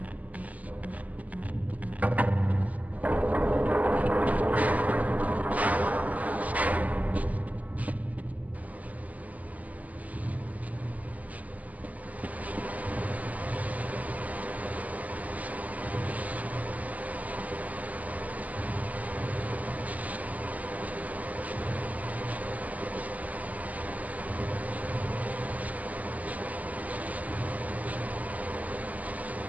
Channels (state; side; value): late; left; 0.076 ms